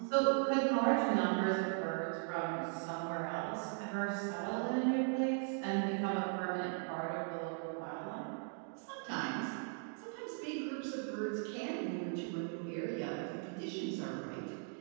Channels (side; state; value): left; silent; 52 dB below the other